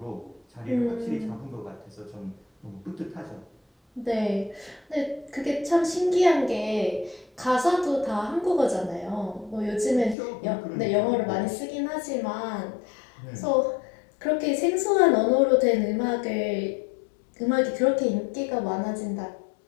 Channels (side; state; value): right; drops out; at 10.2 s